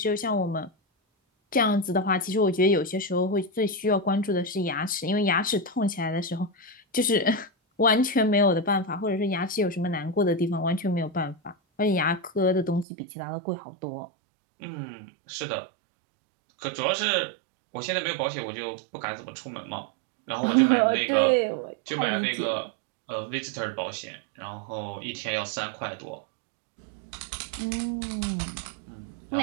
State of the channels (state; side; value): drops out; left; at 12.9 s